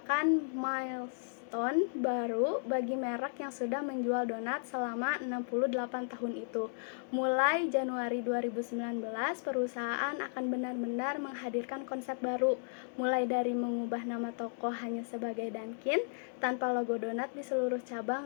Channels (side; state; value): right; silent; digital silence